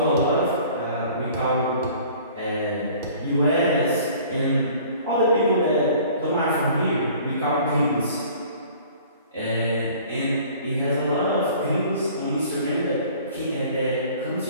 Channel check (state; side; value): inverted; both; correlation -0.50